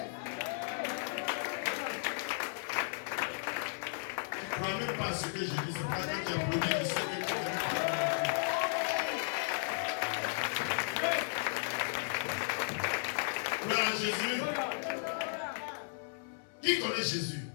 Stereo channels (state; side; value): silent; right; 54 dB below the other